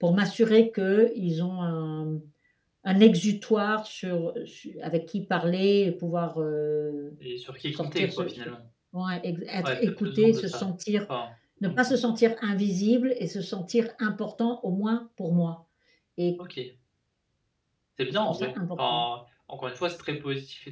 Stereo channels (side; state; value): both; identical; correlation 1.00